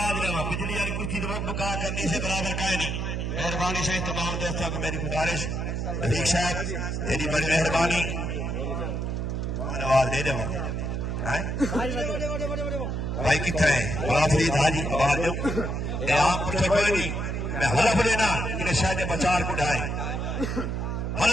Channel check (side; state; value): right; noise; hum, 2 dB below the sound